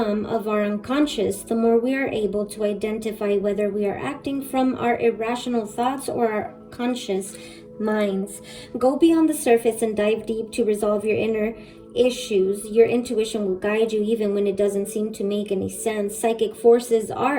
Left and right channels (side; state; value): both; identical; correlation 1.00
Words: of our unconscious, the more we are able to identify whether we are acting from our irrational thoughts or our conscious minds. Go beyond the surface and dive deep to resolve your inner issues. Your intuition will guide you even when it doesn't seem to make any sense. Psychic forces are